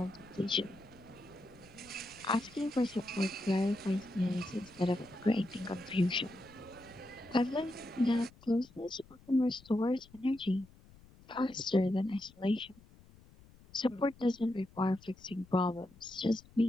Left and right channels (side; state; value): left; noise; rumble, 24 dB below the sound